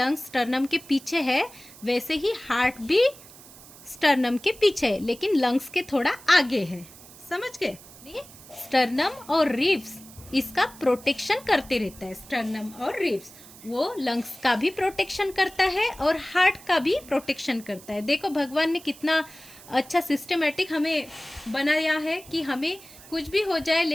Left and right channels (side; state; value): right; noise; hiss, 20 dB below the sound